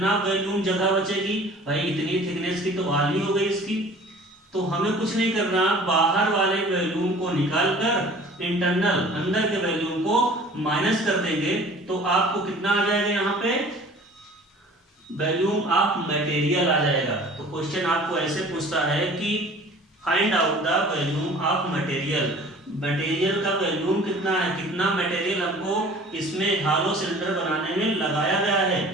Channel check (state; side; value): normal; both; correlation 0.47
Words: वॉल्यूम जगह बचेगी, भाई इतनी थिकनेस की तो वॉल ही हो गई इसकी। तो हमें कुछ नहीं करना, बाहर वाले वॉल्यूम को निकाल कर इंटरनल अंदर के वॉल्यूम को माइनस कर देंगे, तो आपको कितना आ जाएगा, यहाँ पे वॉल्यूम ऑफ मटेरियल आ जाएगा। तो क्वेश्चन आपको ऐसे पूछता है कि find out the volume of material. Material का वॉल्यूम कितना है, कितना मटेरियल हमको इसमें हॉलो सिलेंडर बनाने में लगाया गया है।